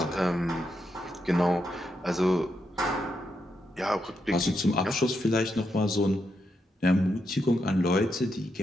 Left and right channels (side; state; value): both; normal; correlation 0.83